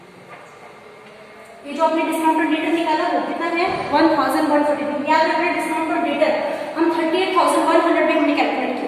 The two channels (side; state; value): both; identical; correlation 1.00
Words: ये जो आपने डिस्काउंट ऑन डेटर निकाला वो कितना है 1142। याद रखना डिस्काउंट ऑन डेटर हम 38,100 में हमने कैलकुलेट किया,